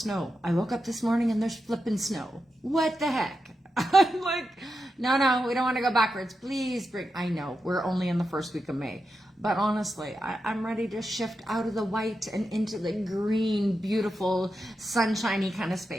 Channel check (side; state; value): both; normal; correlation 0.88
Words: I woke up this morning and there's flipping snow. What the heck? I'm like, no, we don't want to go backwards. Please bring, I know, we're only in the first week of May. But honestly, I'm ready to shift out of the white and into the green, beautiful, sunshiny kind of